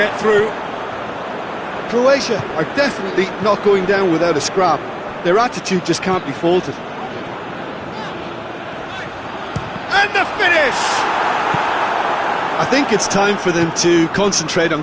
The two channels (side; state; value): both; identical; correlation 1.00